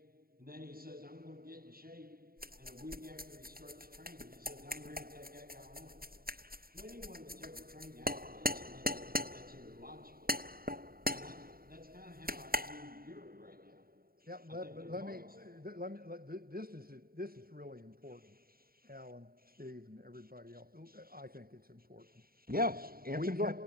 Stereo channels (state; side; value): late; left; 0.43 ms